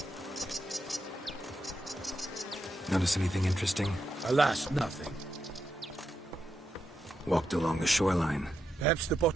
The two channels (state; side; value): normal; both; correlation 0.84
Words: Notice anything interesting? Alas, nothing. Walked along the shoreline. Perhaps the